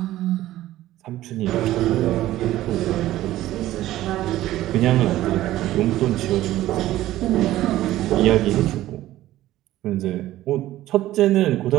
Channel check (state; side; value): quieter; left; 14.9 dB